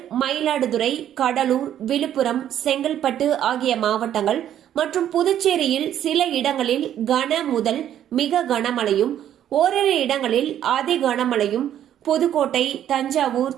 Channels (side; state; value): left; quieter; 10.8 dB